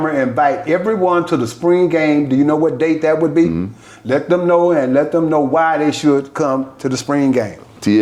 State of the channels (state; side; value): identical; both; correlation 1.00